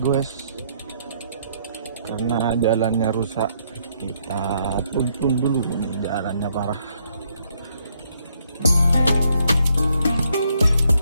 karena jalannya rusak, kita tuntun dulu nih, jalannya parah.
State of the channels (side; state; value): both; inverted; correlation -0.72